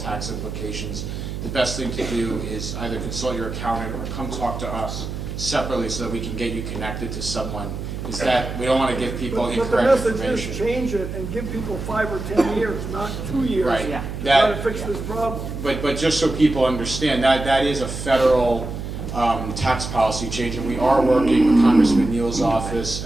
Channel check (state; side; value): noise; right; hum, 6 dB below the sound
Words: implications, the best thing to do is either consult your accountant or come talk to us separately so that we can get you connected to someone. Is that we don't want to give people incorrect But the message information. is change it and give people 5 or 10 years, not 2 years. Right. To That- try to fix this problem. But just so people understand, that is a federal tax policy change, and we are working with Congressman Neal's office,